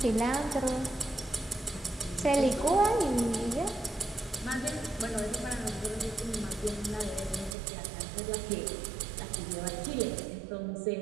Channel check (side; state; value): left; drops out; at 7.6 s